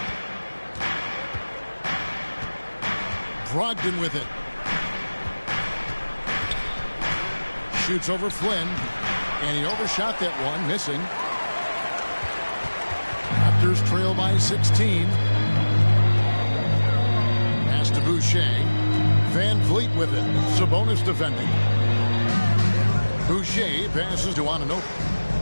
Brogdon with it. Shoots over Flynn. And he overshot that one, missing. Raptors trail by 16. Pass to Boucher. Van Vliet with it. Sabonis defending. Boucher passes to Anunoby.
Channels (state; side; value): inverted; both; correlation -1.00